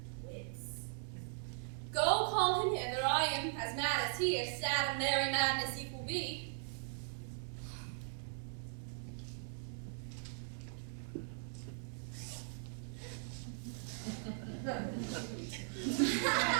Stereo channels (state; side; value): silent; left; digital silence